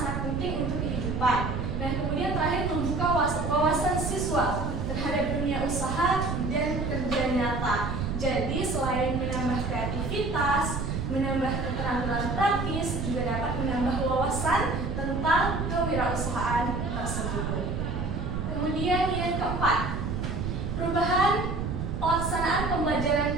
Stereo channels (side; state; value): right; noise; rumble, 2 dB below the sound